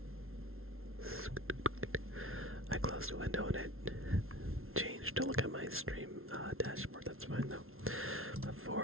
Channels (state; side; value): late; left; 0.62 ms